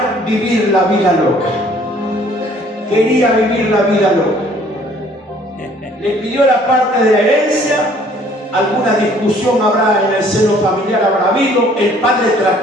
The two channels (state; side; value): normal; both; correlation 0.58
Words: vivir la vida loca. Quería vivir la vida loca. Le pidió la parte de la herencia. Alguna discusión habrá en el seno familiar, habrá habido. El padre